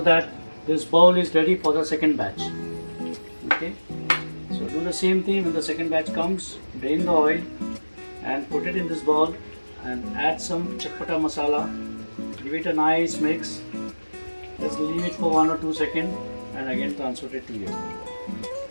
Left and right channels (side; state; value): both; inverted; correlation -1.00